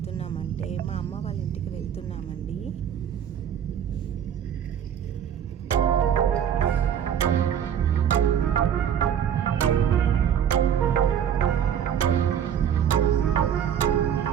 మా అమ్మ వాళ్ళ ఇంటికి వెళ్తున్నామండి.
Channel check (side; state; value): left; quieter; 9.0 dB